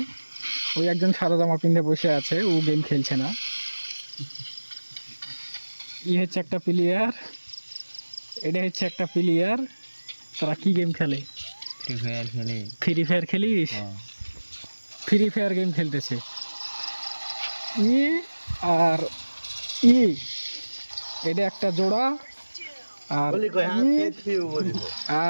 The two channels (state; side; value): inverted; both; correlation -1.00